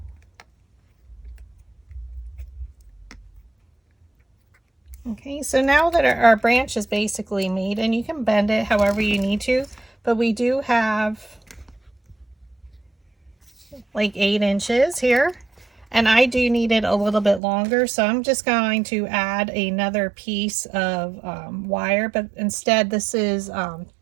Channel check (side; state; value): left; drops out; at 17.4 s